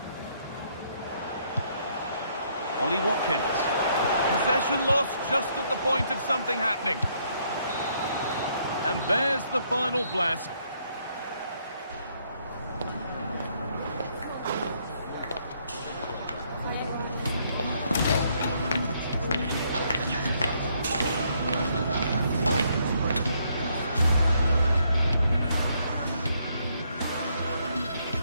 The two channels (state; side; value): inverted; both; correlation -0.71